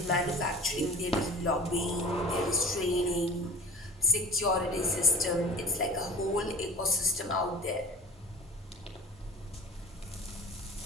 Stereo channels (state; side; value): normal; both; correlation 0.39